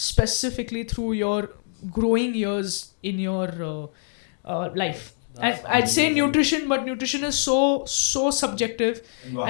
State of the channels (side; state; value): right; silent; digital silence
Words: through your growing years in your life. And I'd say nutrition, but nutrition is so subjective,